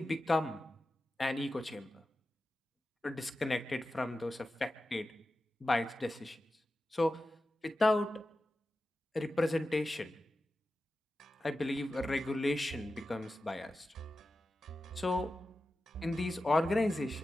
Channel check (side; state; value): both; normal; correlation 0.93